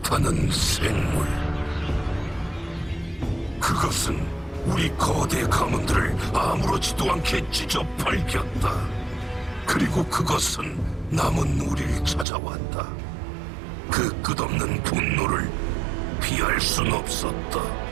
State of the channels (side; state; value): left; drops out; at 12.2 s